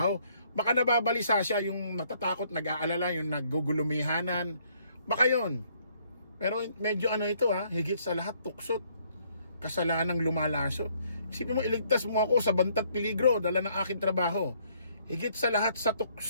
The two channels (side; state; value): both; inverted; correlation -0.66